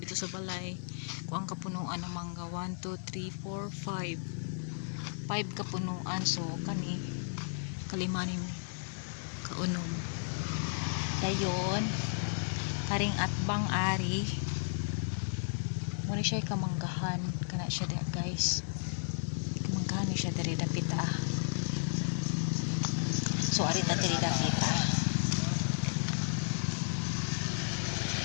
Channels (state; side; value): silent; right; 55 dB below the other